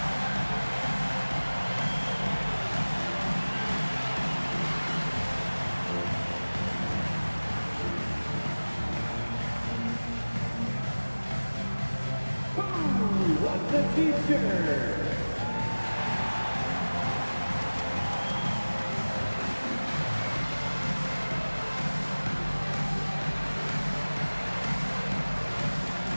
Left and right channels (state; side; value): inverted; both; correlation -1.00